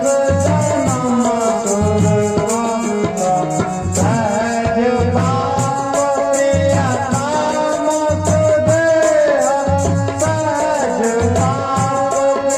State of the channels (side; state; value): both; identical; correlation 1.00